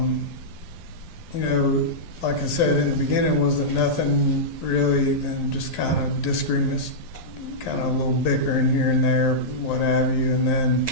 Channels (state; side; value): late; right; 12 ms